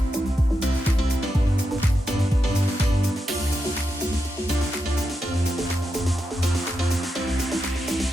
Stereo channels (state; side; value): normal; both; correlation 0.86